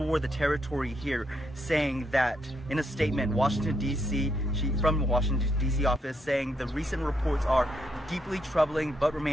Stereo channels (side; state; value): both; normal; correlation 0.77